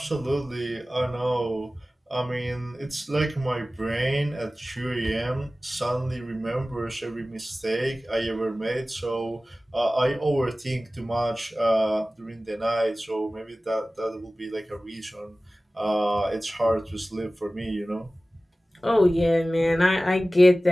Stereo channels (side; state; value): both; normal; correlation 0.97